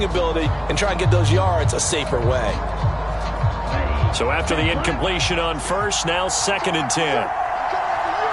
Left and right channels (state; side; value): identical; both; correlation 1.00